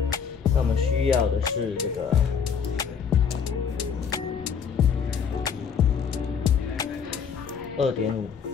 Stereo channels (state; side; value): quieter; right; 6.8 dB